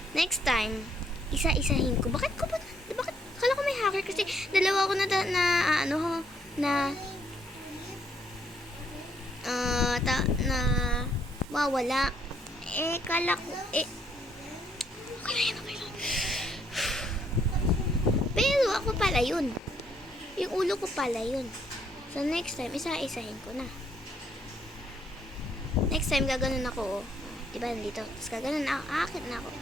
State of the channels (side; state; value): both; normal; correlation 0.70